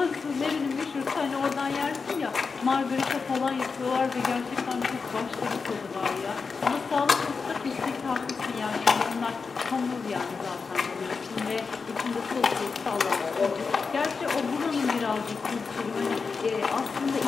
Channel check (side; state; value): right; quieter; 4.9 dB